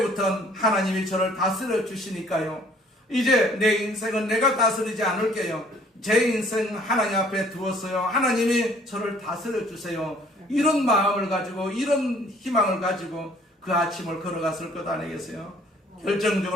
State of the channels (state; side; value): normal; both; correlation 0.58